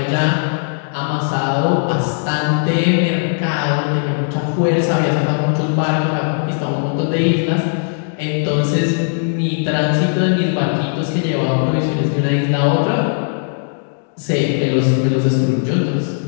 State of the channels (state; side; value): silent; right; digital silence